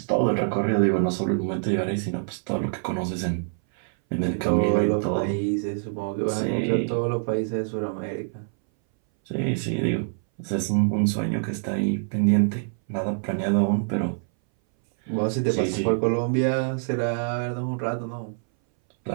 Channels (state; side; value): silent; left; 60 dB below the other